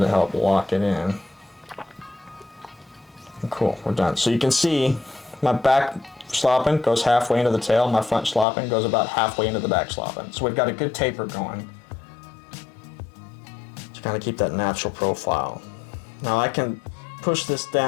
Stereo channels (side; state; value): right; drops out; at 8.5 s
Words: help lock it in. Cool, we're done. So you can see my back schlappen goes halfway into the tail, my front schlappen goes about halfway into the back schlappen. So we've got a good taper going to kind of keep that natural profile. Now I can push this